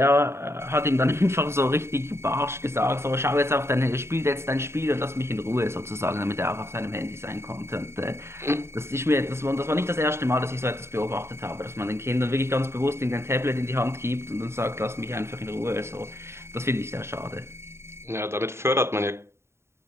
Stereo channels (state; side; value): late; left; 0.13 ms